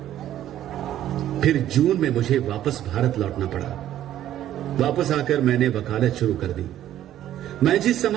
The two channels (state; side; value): quieter; left; 12.1 dB